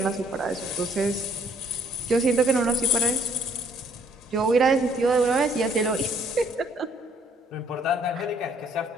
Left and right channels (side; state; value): both; normal; correlation 0.63